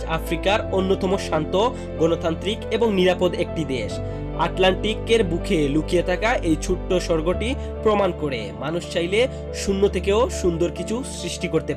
আফ্রিকার অন্যতম শান্ত, গণতান্ত্রিক এবং নিরাপদ একটি দেশ। আটলান্টিকের বুকে লুকিয়ে থাকা এই ছোট্ট স্বর্গটি প্রমাণ করে মানুষ চাইলে শূন্য থেকেও সুন্দর কিছু সৃষ্টি করতে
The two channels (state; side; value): identical; both; correlation 1.00